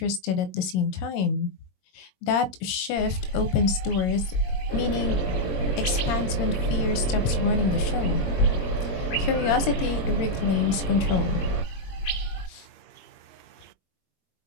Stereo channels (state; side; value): late; right; 22 ms